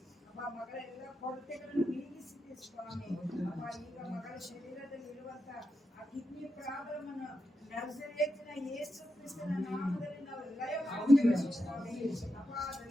ಅಪ್ಪ. ಮಗಳ ಎಲ್ಲ ಕೊರತೆಗಳನ್ನು ನೀಗಿಸಿದ್ದಿ ಸ್ವಾಮಿ ಅಪ್ಪ. ಈಗ ಮಗಳ ಶರೀರದಲ್ಲಿ ಇರುವಂತ ಆ ಕಿಡ್ನಿ ಪ್ರಾಬ್ಲಮ್ ಅನ್ನು ನಜರೇತಿನ ಯೇಸು ಕ್ರಿಸ್ತನ ನಾಮದಲ್ಲಿ ನಾವು ಲಯ ಮಾಡುತ್ತೇವೆ ಸ್ವಾಮಿ ಅಪ್ಪ.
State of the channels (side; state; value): both; normal; correlation 0.87